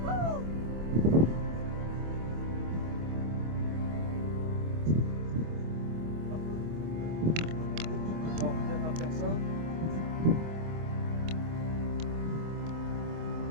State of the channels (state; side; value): late; left; 25 ms